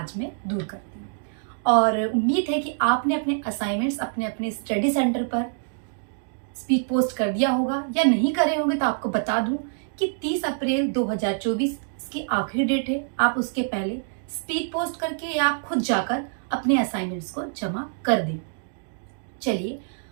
मैं दूर करती हूँ। और उम्मीद है कि आपने अपने असाइनमेंट्स अपने अपने स्टडी सेंटर पर स्पीड पोस्ट कर दिया होगा, या नहीं करे होंगे तो आपको बता दूं कि 30 अप्रैल 2024 इसकी आखिरी डेट है। आप उसके पहले स्पीड पोस्ट करके या आप खुद जाकर अपने असाइनमेंट्स को जमा कर दें। चलिए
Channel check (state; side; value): silent; left; digital silence